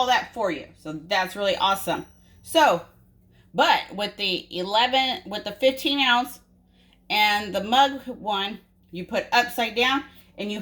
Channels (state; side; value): identical; both; correlation 1.00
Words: that for you. So that's really awesome. So, but with the 15 ounce and the mug one, you put upside down and you